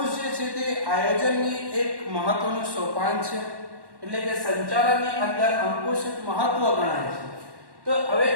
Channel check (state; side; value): late; left; 1.1 ms